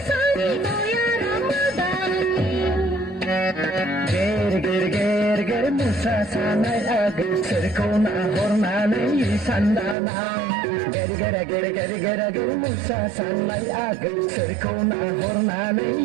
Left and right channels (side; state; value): left; drops out; at 10.0 s